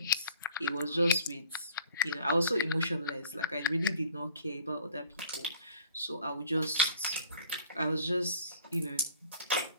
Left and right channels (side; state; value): both; inverted; correlation -0.49